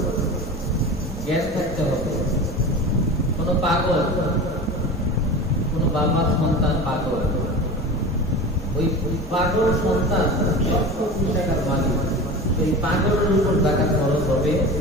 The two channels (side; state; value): both; normal; correlation 0.32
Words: জ্ঞান থাকতে হবে। কোন পাগল, কোন বাবার সন্তান পাগল, ওই পাগল সন্তান 1,00,000 টাকার মালিক, সেই পাগলের উপর যাকাত ফরজ হবে